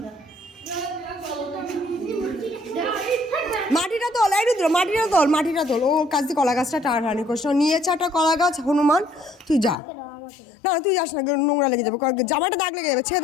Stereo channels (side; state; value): right; drops out; at 9.8 s